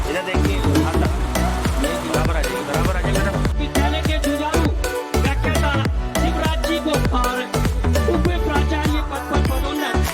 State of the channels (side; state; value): both; identical; correlation 1.00